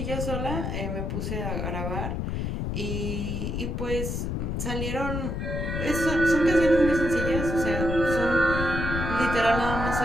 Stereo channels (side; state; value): left; noise; rumble, 2 dB below the sound